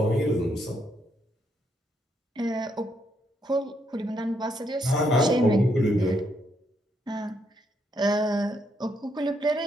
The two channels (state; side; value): normal; both; correlation 0.75